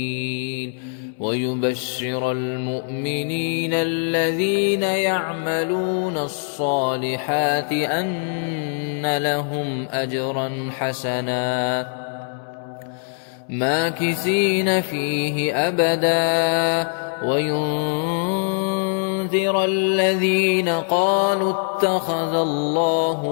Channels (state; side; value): silent; right; 64 dB below the other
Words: ويبشر المؤمنين الذين يعملون الصالحات أن لهم أجرا حسنا ماكثين فيه أبدا وينذر الذين قالوا اتخذ الله